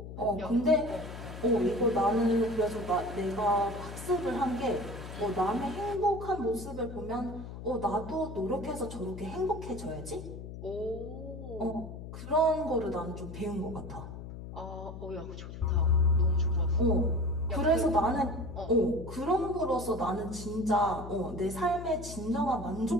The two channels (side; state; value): left; noise; hum, 10 dB below the sound